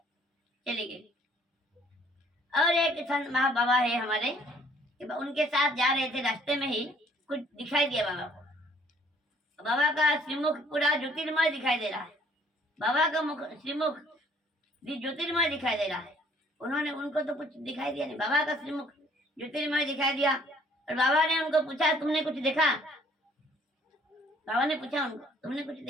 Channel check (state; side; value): normal; both; correlation 0.60